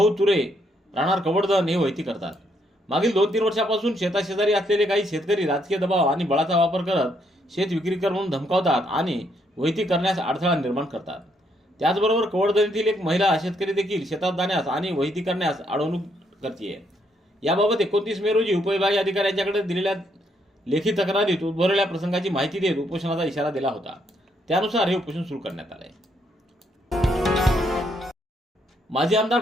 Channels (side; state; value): both; normal; correlation 0.73